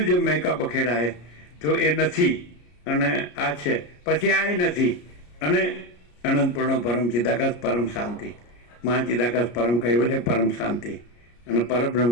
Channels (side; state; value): right; late; 34 ms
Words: જે મૈકા બખેડા છે તો એ નથી અને આ છે, પછી આ નથી. અને અનંતપૂર્ણ પરમ ચિદાકાશ પરમ શાંતિ, મહાચિદાકાશ પરમ કૈવલ્ય પરમ શાંતિ અને